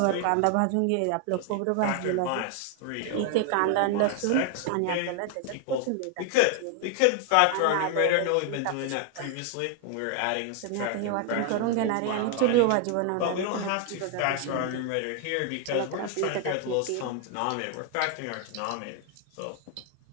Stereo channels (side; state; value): both; different; correlation 0.00